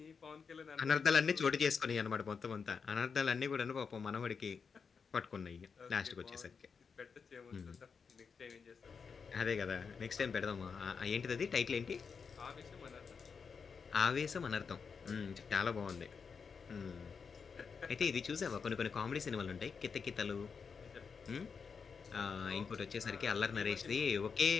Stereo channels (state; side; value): quieter; right; 5.8 dB